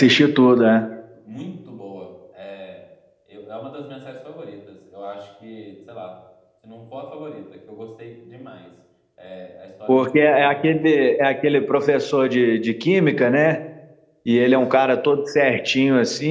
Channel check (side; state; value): both; identical; correlation 1.00